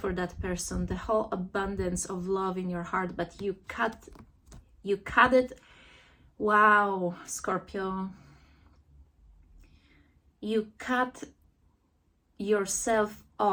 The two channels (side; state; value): both; identical; correlation 1.00